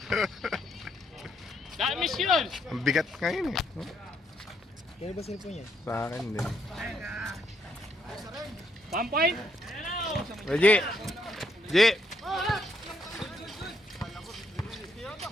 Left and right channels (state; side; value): normal; both; correlation 0.74